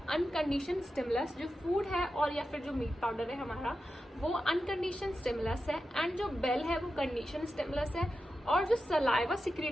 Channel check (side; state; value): both; normal; correlation 0.91